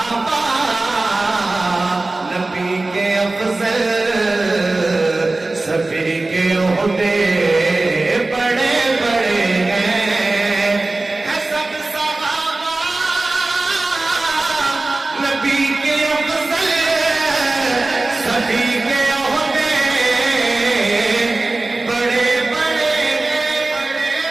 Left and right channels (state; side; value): quieter; left; 3.1 dB